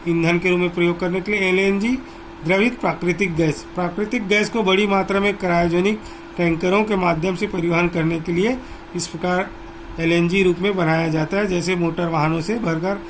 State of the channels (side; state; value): both; identical; correlation 1.00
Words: ईंधन के रूप में प्रयोग करने के लिए। LNG द्रवित प्राकृतिक गैस को बड़ी मात्रा में क्रायोजेनिक टैंकरों के माध्यम से परिवहन करने के लिए इस प्रकार एलएनजी रूप में बनाया जाता है। जैसे मोटर वाहनों से भरकर